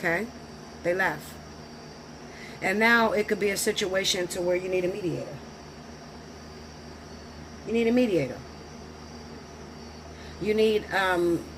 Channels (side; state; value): both; identical; correlation 1.00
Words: they left. And now it could be a situation to where you need a mediator. You need a mediator. You need,